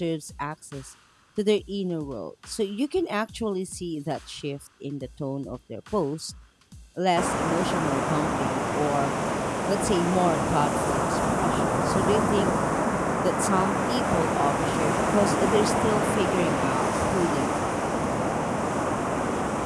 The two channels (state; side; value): identical; both; correlation 1.00